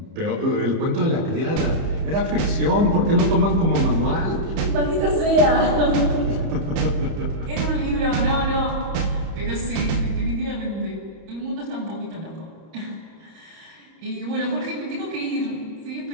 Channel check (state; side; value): late; left; 31 ms